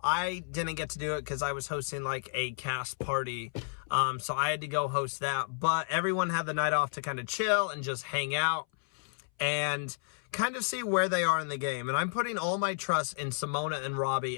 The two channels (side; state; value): right; silent; 57 dB below the other